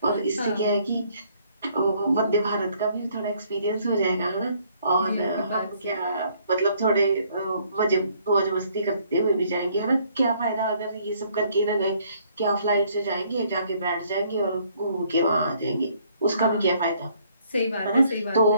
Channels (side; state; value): both; inverted; correlation -0.64